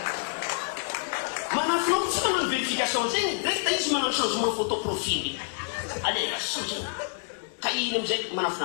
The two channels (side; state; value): right; silent; digital silence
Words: manafo tsy magnano verification zegny rehefa izy manao changement photo profil alela soto ka iny amizay manafo